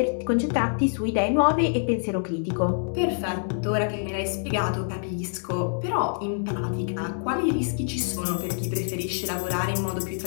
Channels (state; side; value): silent; right; digital silence